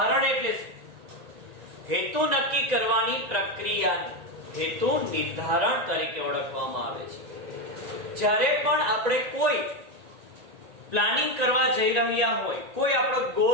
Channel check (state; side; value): late; left; 1.8 ms